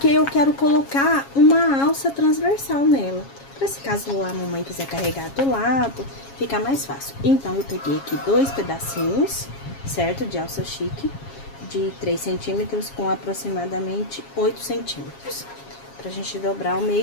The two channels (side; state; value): right; late; 7.3 ms